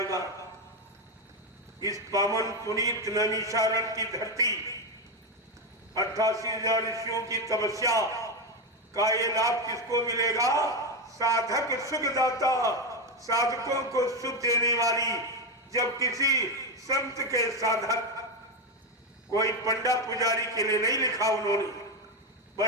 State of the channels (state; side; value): normal; both; correlation 0.10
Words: इस पावन पुनीत नैमिषारण्य की धरती, 88,000 ऋषियों की तपस्या का ये लाभ किसको मिलेगा? साधक सुखदाता, साधकों को सुख देने वाली। जब किसी संत के साधक, कोई पंडा पुजारी के लिए नहीं लिखा उन्होंने,